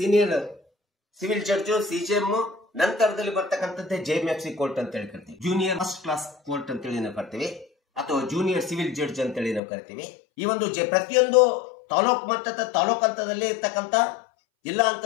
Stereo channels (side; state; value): right; drops out; at 9.6 s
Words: ಸಿವಿಲ್ ಜಡ್ಜ್ ಸಿಜಿಎಂ ನಂತರದಲ್ಲಿ ಬರ್ತಕ್ಕಂಥದ್ದೇ ಜೆಎಂಎಫ್ಸಿ ಕೋರ್ಟ್ ಅಂತ ಹೇಳಿ ಕರಿತೀವಿ. ಜೂನಿಯರ್ ಫಸ್ಟ್ ಕ್ಲಾಸ್ ಕೋರ್ಟ್ ಅಂತೇಳಿ ನಾವು ಕರಿತೀವಿ ಅಥವಾ ಜೂನಿಯರ್ ಸಿವಿಲ್ ಜಡ್ಜ್ ಅಂತೇಳಿ ನಾವು ಕರಿತೀವಿ. ಈ ಒಂದು ಪ್ರತಿಯೊಂದು ತಾಲೂಕ್ ಹಂತದಲ್ಲಿ ಇರ್ತಕ್ಕಂಥ ಜಿಲ್ಲಾ